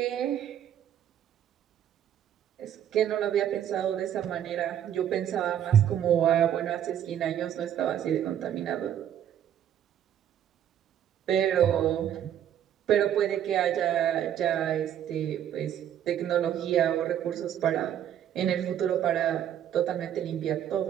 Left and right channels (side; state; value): left; quieter; 10.2 dB